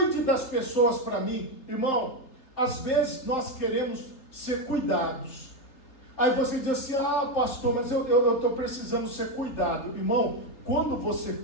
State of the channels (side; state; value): right; late; 3.8 ms